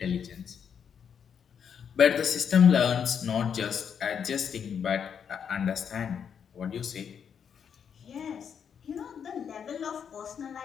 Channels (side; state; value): right; quieter; 7.5 dB